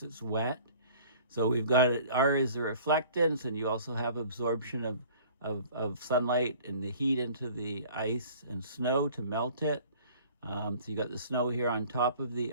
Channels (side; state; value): both; inverted; correlation -0.49